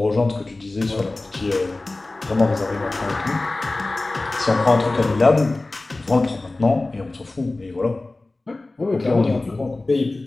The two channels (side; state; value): right; quieter; 3.1 dB